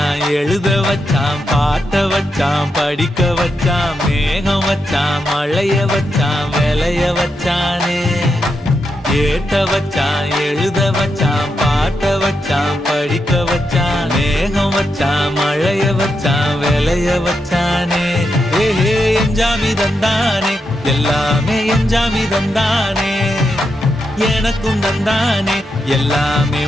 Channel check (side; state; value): both; normal; correlation 0.85